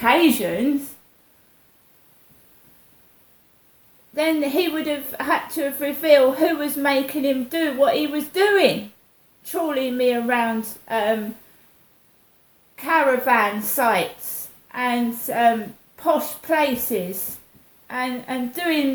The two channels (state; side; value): identical; both; correlation 1.00